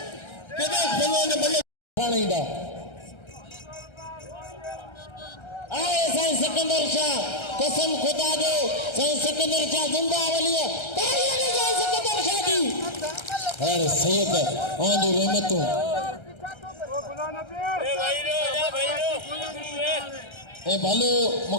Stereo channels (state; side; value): late; right; 1.3 ms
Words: केदा भलो ने मलक खाणीदा आए साईं सिकंदर शाह कसम खुदा जो साईं सिकंदर शाह जिंदावली तारीख़ ने साईं सिकंदर शाह दी अरे सैयद आंधी रहमतों ए भलो